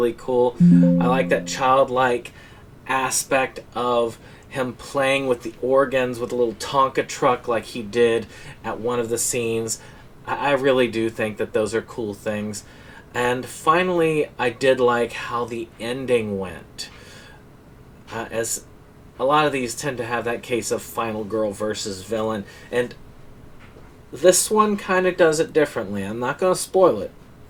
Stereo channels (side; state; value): both; identical; correlation 1.00